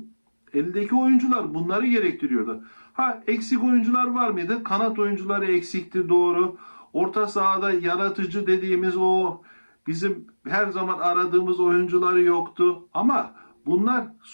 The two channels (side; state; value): both; inverted; correlation -1.00